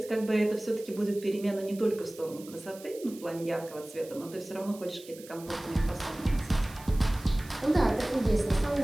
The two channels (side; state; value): right; noise; hiss, 19 dB below the sound